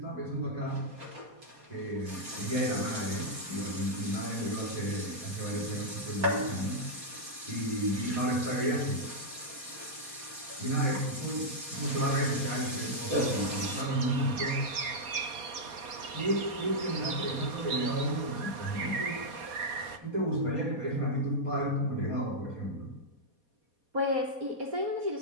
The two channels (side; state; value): left; late; 4.2 ms